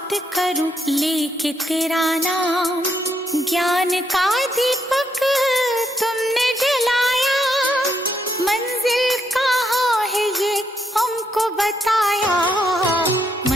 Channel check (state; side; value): normal; both; correlation 0.77